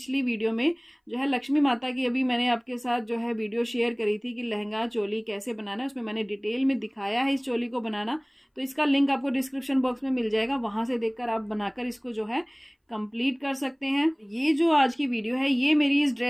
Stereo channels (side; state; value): both; identical; correlation 1.00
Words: वीडियो में जो है लक्ष्मी माता की, अभी मैंने आपके साथ जो है वीडियो शेयर करी थी कि लहंगा चोली कैसे बनाना है, उसमें मैंने डिटेल में दिखाया है इस चोली को बनाना। तो इसका लिंक आपको डिस्क्रिप्शन बॉक्स में मिल जाएगा, वहां से देखकर आप बनाकर इसको जो है कंप्लीट कर सकते हैं। ये जो आज की वीडियो है, ये मेरी इस